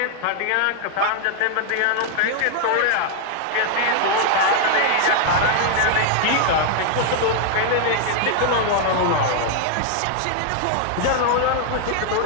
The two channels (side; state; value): both; different; correlation 0.00